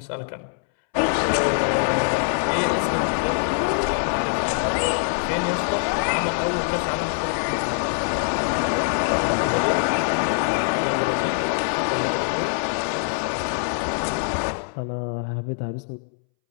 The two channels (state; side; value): silent; right; 63 dB below the other